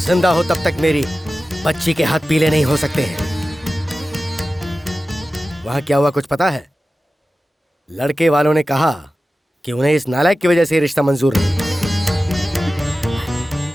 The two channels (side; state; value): both; normal; correlation 0.95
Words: हो तब तक मेरी बच्ची के हाथ पीले नहीं हो सकते हैं। वहां क्या हुआ कुछ पता है? लड़के वालों ने कहा कि उन्हें इस नालायक की वजह से रिश्ता मंजूर नहीं।